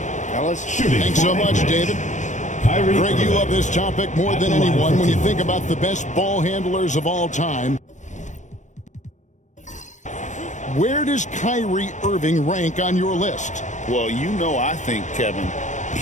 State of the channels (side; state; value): right; late; 0.35 ms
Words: Fellas, Thanks so much, David. Greg, you love this topic more than anyone when you think about the best ball handlers of all time. Where does Kyrie Irving rank on your list? Well, you know, I think, Kevin,